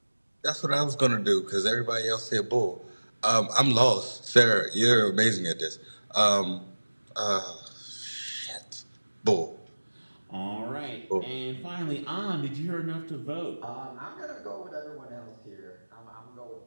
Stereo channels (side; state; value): both; inverted; correlation -1.00